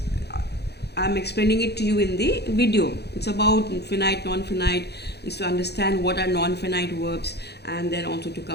I'm explaining it to you in the video. It's about finite, non-finite, is to understand what are non-finite verbs, and then also to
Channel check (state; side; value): late; right; 0.48 ms